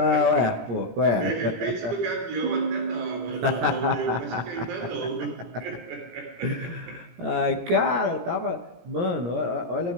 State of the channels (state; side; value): late; left; 17 ms